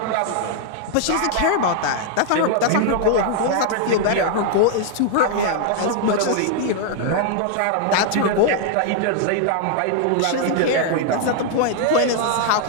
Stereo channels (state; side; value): different; both; correlation 0.00